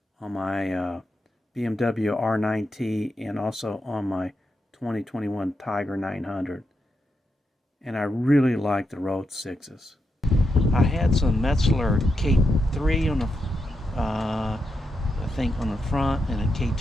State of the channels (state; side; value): normal; both; correlation 0.85